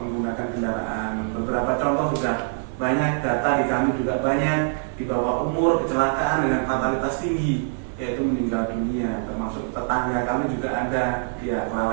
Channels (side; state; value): left; silent; digital silence